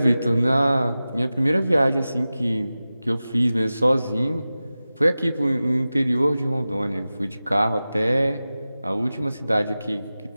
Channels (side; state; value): both; inverted; correlation -0.95